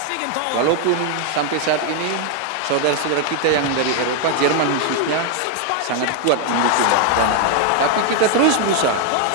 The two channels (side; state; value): both; different; correlation 0.01